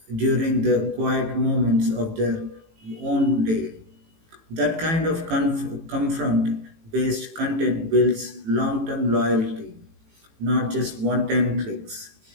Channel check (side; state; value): left; late; 18 ms